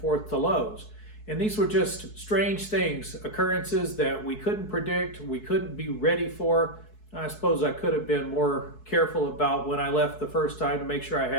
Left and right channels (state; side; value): late; right; 4.7 ms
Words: to Lowe's. And these were just strange things, occurrences that we couldn't predict, we couldn't be ready for. I suppose I could have been more careful about when I left the first time to make sure I